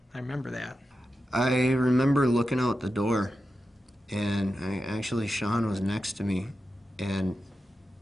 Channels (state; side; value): normal; both; correlation 0.91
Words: I remember that. I remember looking out the door, and Sean was next to me, and